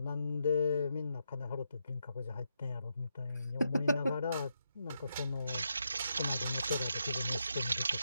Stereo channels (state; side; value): inverted; both; correlation -0.82